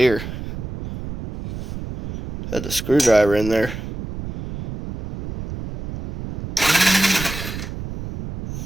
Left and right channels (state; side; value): noise; right; rumble, 9 dB below the sound